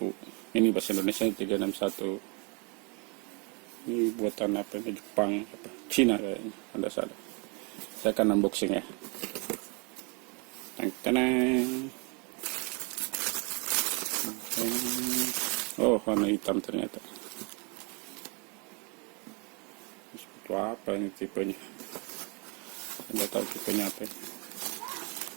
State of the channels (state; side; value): quieter; left; 32.9 dB